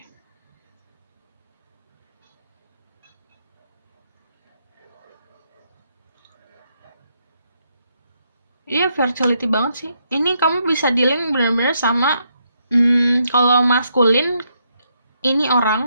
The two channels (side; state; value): both; inverted; correlation -0.77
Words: Iya, fertility banget sih. Ini kamu bisa dealing benar-benar sama kalau maskulin, ini